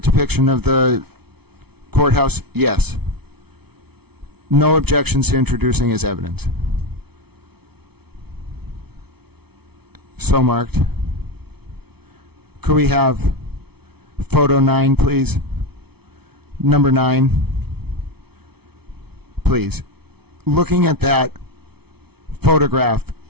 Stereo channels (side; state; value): left; late; 0.97 ms